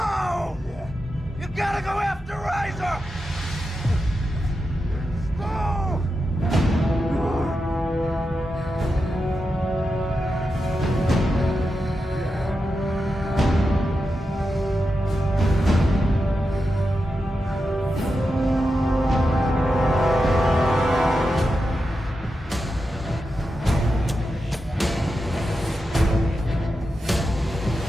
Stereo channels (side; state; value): both; normal; correlation 0.89